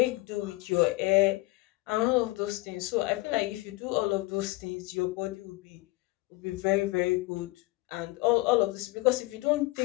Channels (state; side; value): quieter; right; 21.6 dB